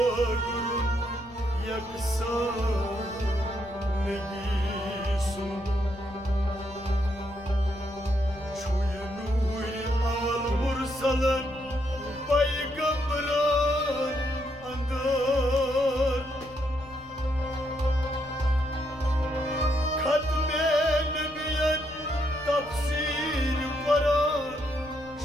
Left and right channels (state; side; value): noise; left; rumble, 21 dB below the sound